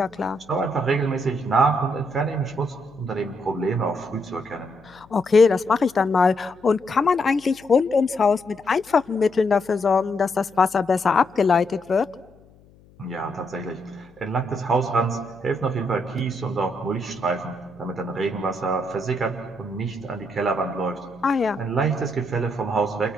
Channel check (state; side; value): noise; left; hum, 27 dB below the sound